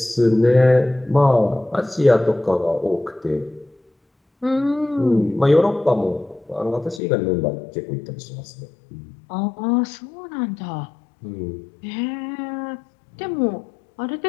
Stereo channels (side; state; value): right; drops out; at 7.0 s